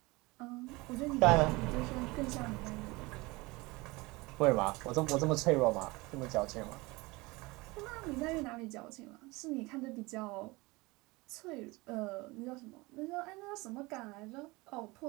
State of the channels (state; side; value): quieter; left; 23.3 dB